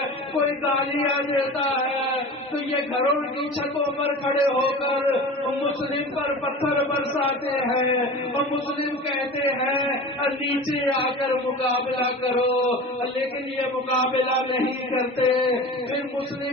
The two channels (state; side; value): normal; both; correlation 0.34